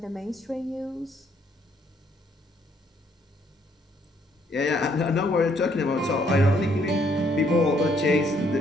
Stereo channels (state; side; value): normal; both; correlation 0.68